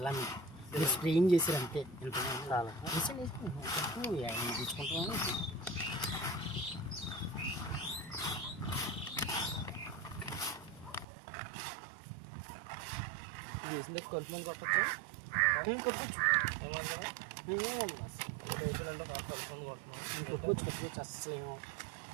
మీరు స్ప్రేయింగ్ చేసారు అంతే. చాలా తీసుకుంటామని వేసిన కలుపు మంది కొట్టచ్చు. ఏమన్నా కొట్టుకోవచ్చు అస్సలు ఏమో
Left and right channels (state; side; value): drops out; left; at 11.1 s